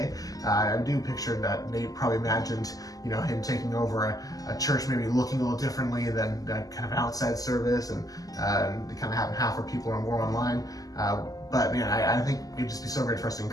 I do picture that Nate probably imagined him taking over a church maybe looking a little differently than that kind of outside service, and kind of having half our people are more online. But man, I think it'd just be so great for us to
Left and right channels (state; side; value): late; right; 0.17 ms